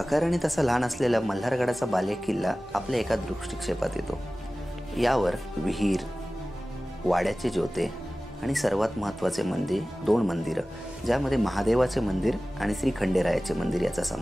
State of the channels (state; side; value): normal; both; correlation 0.97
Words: तसा लहान असलेला मल्हारगडाचा बाले किल्ला आपल्या एका दृष्टिक्षेपात येतो. यावर विहीर, वाड्याचे ज्योते आणि सर्वात महत्त्वाचे मंदिर, 2 मंदिरं, ज्यामध्ये महादेवाचे मंदिर आणि श्री खंडेरायाचे मंदिर याचा